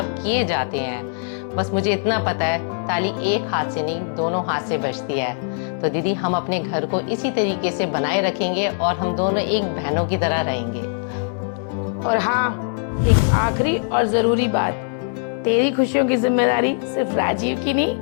किए जाते हैं। बस मुझे इतना पता है, ताली एक हाथ से नहीं, दोनों हाथ से बजती है। तो दीदी, हम अपने घर को इसी तरीके से बनाए रखेंगे और हम दोनों एक बहनों की तरह रहेंगे। और हाँ, एक आखिरी और जरूरी बात, तेरी खुशियों की जिम्मेदारी सिर्फ राजीव की नहीं,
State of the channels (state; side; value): silent; right; 60 dB below the other